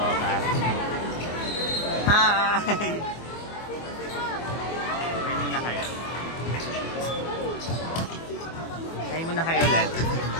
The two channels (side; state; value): right; late; 24 ms